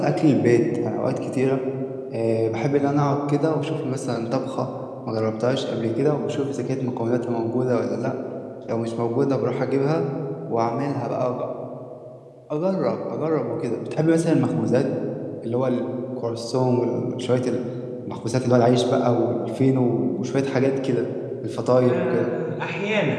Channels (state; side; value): identical; both; correlation 1.00